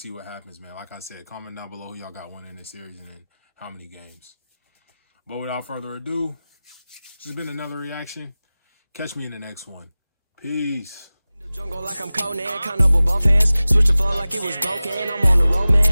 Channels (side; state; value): both; inverted; correlation -0.97